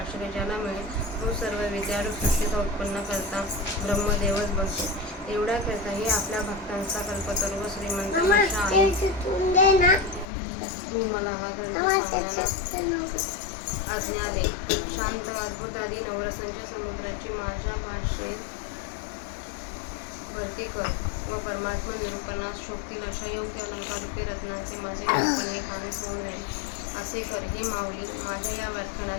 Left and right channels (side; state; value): right; drops out; at 10.2 s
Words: ज्याला मिळेल तो सर्व विद्यारूप सृष्टीचा उत्पन्न करता ब्रह्मदेवच बनतो. एवढ्या करता हे आपल्या भक्तांचा कल्पतरू व श्रीमंत आशा आहे. तू मला हा ग्रंथ सांगण्याला आज्ञा दे. शांत अद्भुत आदी नवरसांच्या समुद्राची माझ्या भाषेत भरती कर व परमात्मा निरूपणास शोभतील अशा योग्य अलंकारूपी रत्नांचे माझे निरूपण हे खाणेस होऊन राहील असे कर. हे माऊली, माझ्या या